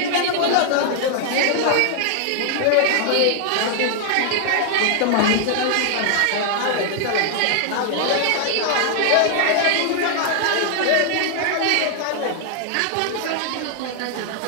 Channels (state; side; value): different; both; correlation 0.00